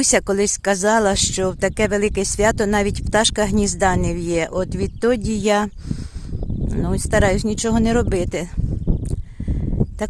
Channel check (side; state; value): both; identical; correlation 1.00